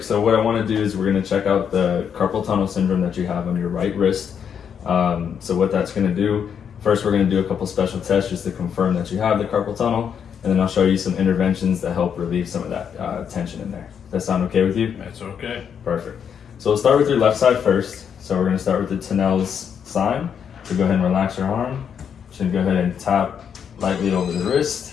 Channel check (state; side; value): quieter; right; 7.7 dB